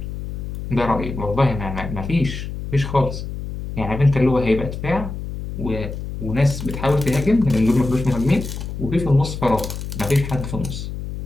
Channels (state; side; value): noise; left; hum, 7 dB below the sound